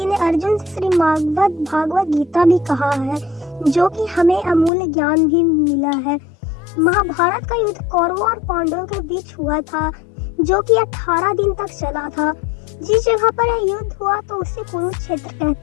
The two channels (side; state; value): right; drops out; at 4.7 s